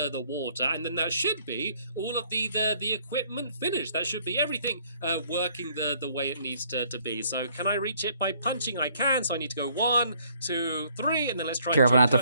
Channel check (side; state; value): both; inverted; correlation -0.63